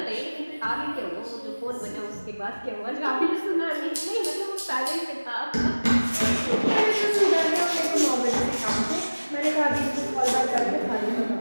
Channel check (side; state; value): both; inverted; correlation -1.00